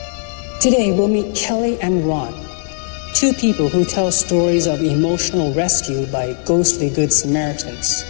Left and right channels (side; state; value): right; silent; digital silence